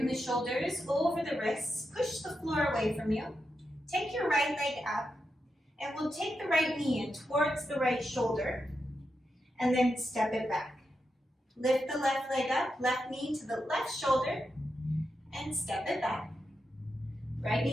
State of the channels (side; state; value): both; normal; correlation 0.87